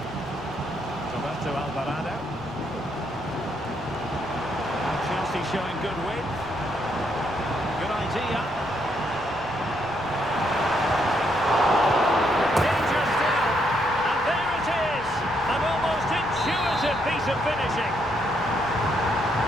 Roberto Alvarado. And Chelsea showing good width. Good idea. Danger still. And there it is. An almost intuitive piece of finishing.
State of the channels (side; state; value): left; noise; rumble, 20 dB below the sound